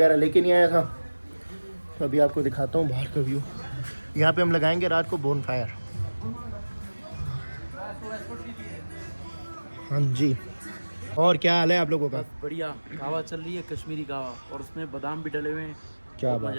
लेके नहीं आया था। तो अभी आपको दिखाता हूँ बाहर का व्यू। यहाँ पे हम लगाएंगे रात को बोन फायर। हाँ जी, और क्या हाल है आप लोगों का? बढ़िया। कहवा चल रही है, कश्मीरी कहवा, और उसमें बादाम भी डले हुए हैं। क्या बहुत बात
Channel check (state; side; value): inverted; both; correlation -1.00